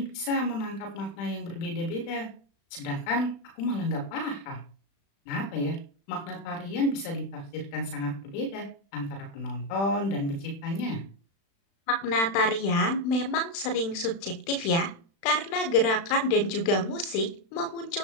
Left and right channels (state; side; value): late; right; 36 ms